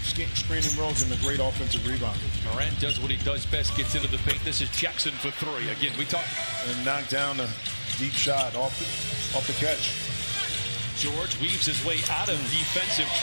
screening roles, and a great offensive rebounder. Morant does what he does best, gets into the paint. This is Jackson for 3. Again, we talked. And knocked down a deep shot off the catch. George weaves his way out of defensive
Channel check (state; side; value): inverted; both; correlation -1.00